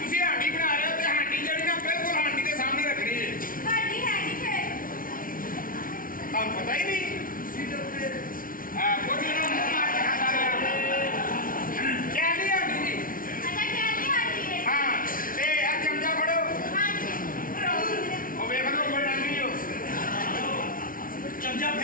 ਤੁਸੀਂ ਹਾਂਡੀ ਬਣਾ ਰਹੇ ਹੋ ਤੇ ਹਾਂਡੀ ਜਿਹੜੀ ਨਾ ਬਿਲਕੁਲ ਹਾਂਡੀ ਦੇ ਸਾਹਮਣੇ ਰੱਖਣੀ ਹੈ। ਤੁਹਾਨੂੰ ਪਤਾ ਹੀ ਨਹੀਂ। ਕੁਝ ਨਾ ਮੂੰਹ ਮਾਰ ਕੇ ਖਾਂਦਾ ਰਿਹਾ। ਕਹਿੰਦੀ ਹਾਂਡੀ ਜੀ। ਹਾਂ ਤੇ ਆ ਚਮਚਾ ਫੜੋ। ਉਹ ਵੇਖ ਲਓ ਕੋਈ ਰੰਗ ਨਹੀਂ ਹੋ। ਚਮਚਾ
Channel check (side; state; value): right; late; 0.40 ms